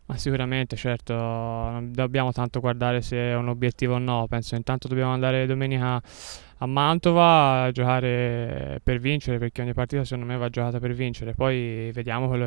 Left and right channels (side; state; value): left; silent; digital silence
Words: Ma sicuramente, certo, non dobbiamo tanto guardare se è un obiettivo o no, penso intanto dobbiamo andare domenica a Mantova a giocare per vincere, perché ogni partita secondo me va giocata per vincere, poi vediamo quello